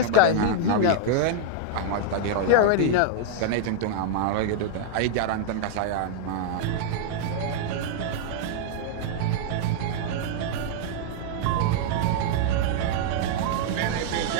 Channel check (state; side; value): different; both; correlation -0.01